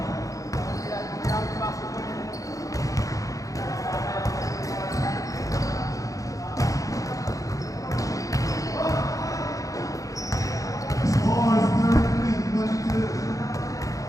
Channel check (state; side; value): late; right; 0.16 ms